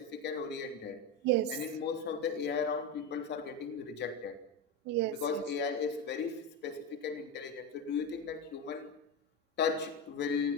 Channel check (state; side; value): normal; both; correlation 0.15